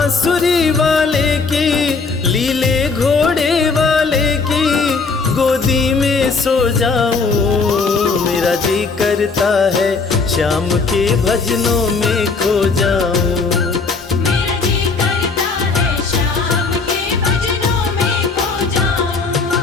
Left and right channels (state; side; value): quieter; right; 4.5 dB